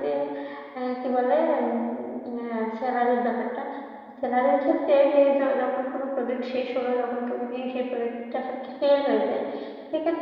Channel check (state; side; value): identical; both; correlation 1.00